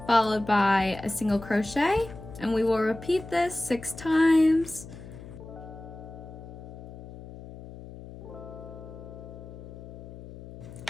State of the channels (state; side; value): noise; left; hum, 14 dB below the sound